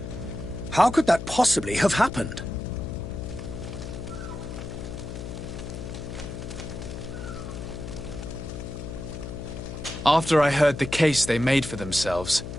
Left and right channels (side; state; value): left; noise; hum, 8 dB below the sound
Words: How could that possibly have happened? After I heard the case they made for themselves,